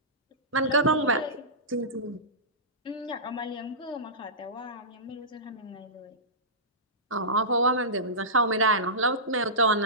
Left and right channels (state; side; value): normal; both; correlation -0.20